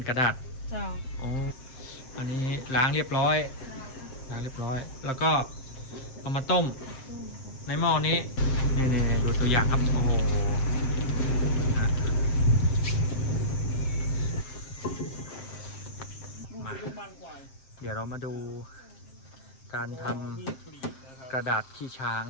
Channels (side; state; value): right; late; 7.6 ms